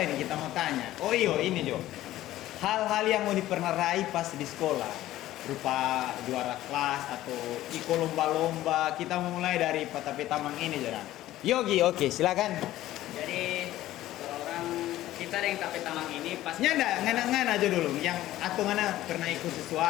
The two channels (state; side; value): quieter; right; 14.7 dB